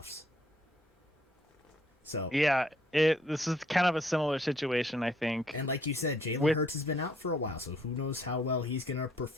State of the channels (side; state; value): both; normal; correlation 0.65